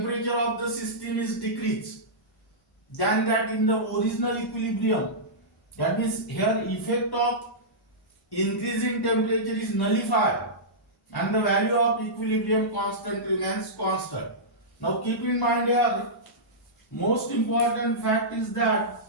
of the system is decreased than that in the original equilibrium. That means here effect of increasing temperature is nullified and the value of equilibrium constant remains constant. Now keep in mind here, most important fact is that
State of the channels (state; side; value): normal; both; correlation -0.15